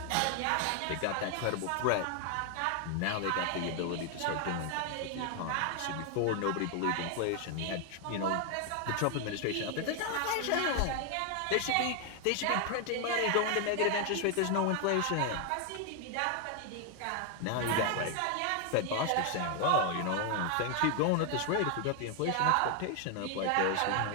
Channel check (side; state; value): both; different; correlation 0.01